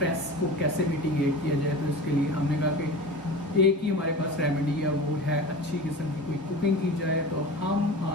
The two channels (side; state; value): both; normal; correlation 0.33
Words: को कैसे मिटिगेट किया जाए। तो इसके लिए हमने कहा कि एक ही हमारे पास रेमेडी है, वो है अच्छी किस्म की कोई कुकिंग की जाए। तो हम